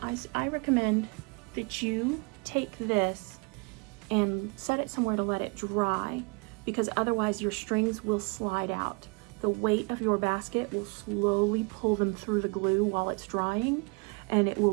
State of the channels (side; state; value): left; quieter; 31.8 dB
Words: I recommend that you take this and set it somewhere to let it dry, because otherwise your strings will slide out. The weight of your basket will slowly pull them through the glue while it's drying, and it